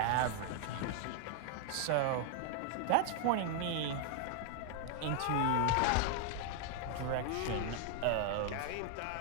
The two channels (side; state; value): both; different; correlation 0.00